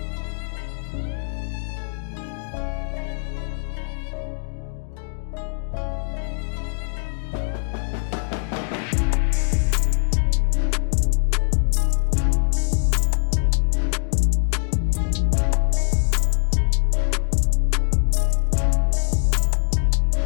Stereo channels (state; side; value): silent; right; digital silence